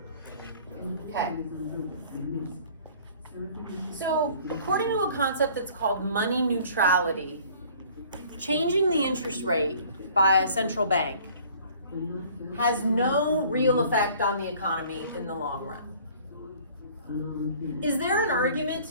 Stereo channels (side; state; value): both; inverted; correlation -0.52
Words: Okay. So according to a concept that's called money neutrality, changing the interest rate by a central bank has no real effect on the economy in the long run. Is there an argument